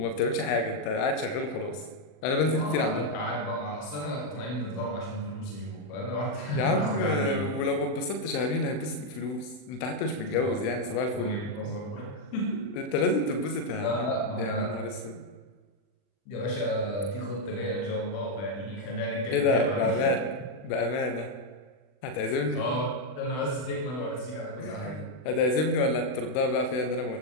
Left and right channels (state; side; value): late; right; 40 ms